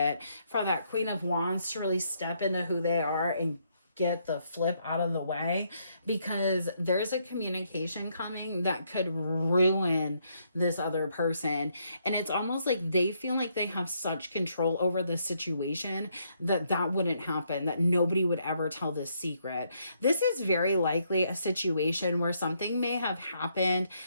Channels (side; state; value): both; inverted; correlation -0.73